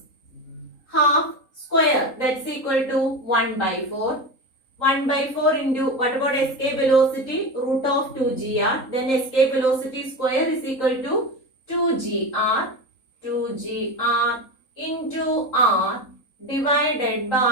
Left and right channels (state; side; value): late; right; 3.8 ms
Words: half square, that's equal to 1 by 4. 1 by 4 into, what about escape velocity? Root of 2gr. Then escape velocity square is equal to 2gr into r divided